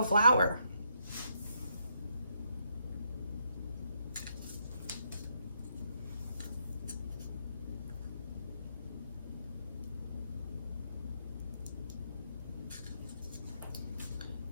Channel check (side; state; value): both; inverted; correlation -0.76